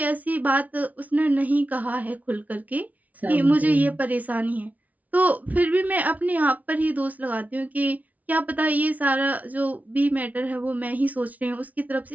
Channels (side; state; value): left; late; 0.073 ms